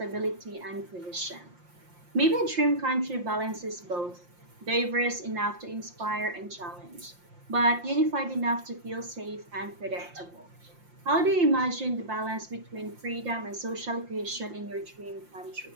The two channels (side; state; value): left; late; 5.7 ms